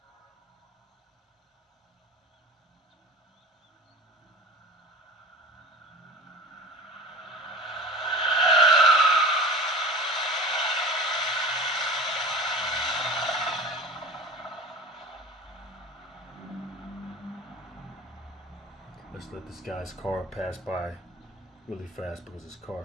Let's let this guy's car pass by really fast because his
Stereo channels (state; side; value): normal; both; correlation 0.36